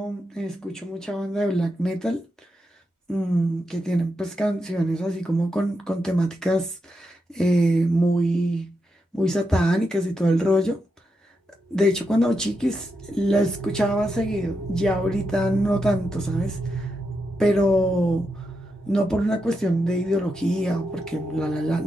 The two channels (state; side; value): normal; both; correlation 0.85